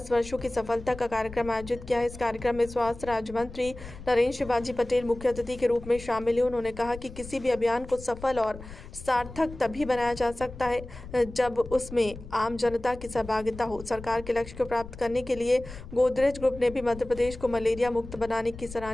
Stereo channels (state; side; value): noise; left; rumble, 14 dB below the sound